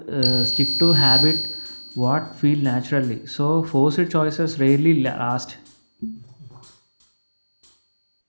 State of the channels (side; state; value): both; inverted; correlation -1.00